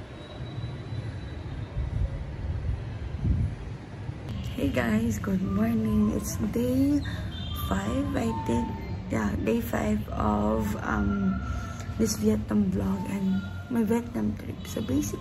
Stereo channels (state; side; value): identical; both; correlation 1.00